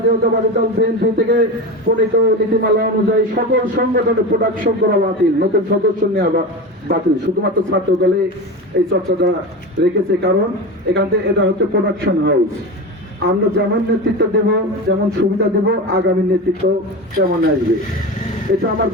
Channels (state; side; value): normal; both; correlation 0.25